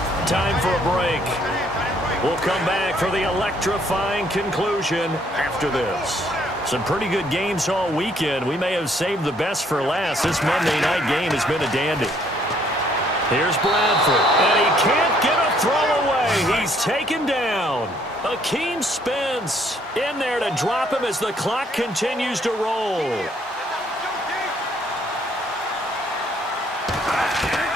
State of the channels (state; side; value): normal; both; correlation 0.66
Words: Time for a break. We'll come back for the electrifying conclusion after this. Some pretty good games all weekend. We may have saved the best for last. This Monday night game has been a dandy. Here's Bradford, and he can't get a throw away. He's taken down. Akeem Spence in there to drop him as the clock continues to roll.